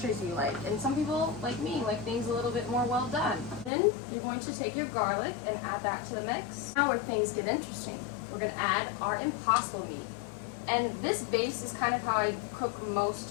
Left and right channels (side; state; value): right; drops out; at 3.7 s